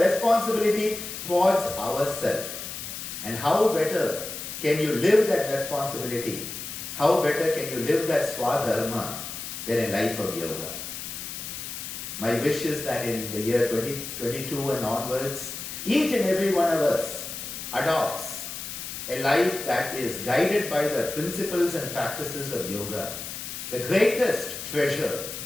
responsibility towards ourselves. And how better can you live that responsibility? How better can you live that swadharma than a life of yoga? My wish is that in the year 2022 and onwards, each and every one of us adopts a life that is guided by the principles and practices of yoga, the greatest treasure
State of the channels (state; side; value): noise; left; hiss, 8 dB below the sound